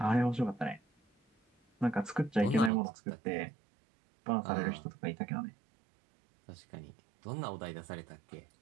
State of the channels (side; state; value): left; drops out; at 2.7 s